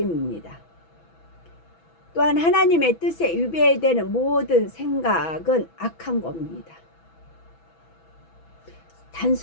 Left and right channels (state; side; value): late; right; 6.1 ms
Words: 또한 하나님의 뜻에 위배되는 모든 생각은 악한 겁니다.